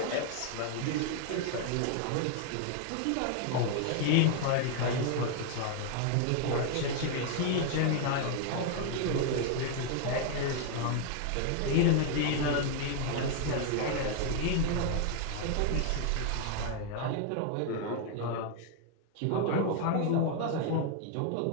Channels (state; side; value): different; both; correlation 0.00